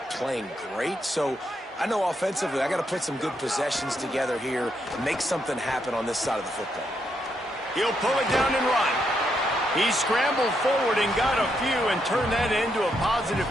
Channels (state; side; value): normal; both; correlation 0.79